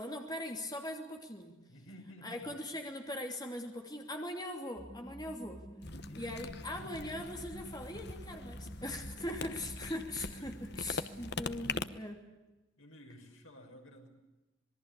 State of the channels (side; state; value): both; normal; correlation 0.45